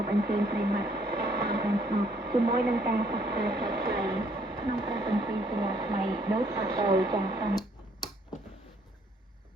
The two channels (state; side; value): normal; both; correlation 0.66